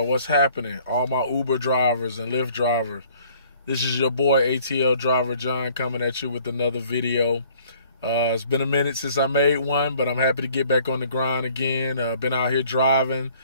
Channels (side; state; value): both; inverted; correlation -0.57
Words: what's happening? All my Uber drivers and Lyft drivers. This is your boy, ATL Driver John, coming at you with another video. It's been a minute since I made one, but I'm happy to get back on the grind again. Been out here driving.